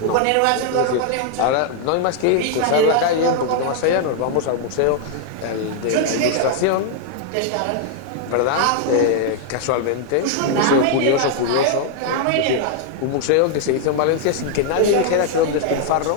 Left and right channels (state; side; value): different; both; correlation 0.00